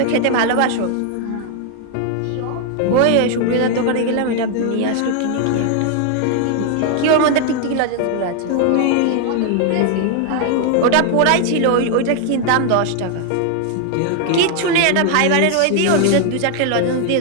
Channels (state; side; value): different; both; correlation 0.00